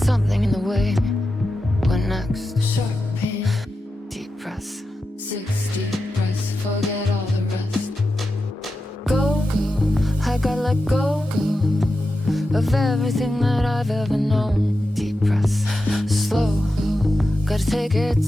in the way. What next? Sharp pain, deep breaths. 6 deep breaths, forget all the rest. Go, I gotta let go of everything that I've ever known. Deep breaths, slow, gotta take it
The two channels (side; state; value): both; normal; correlation 0.91